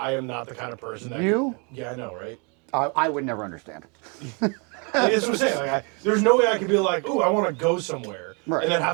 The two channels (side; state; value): left; quieter; 34.2 dB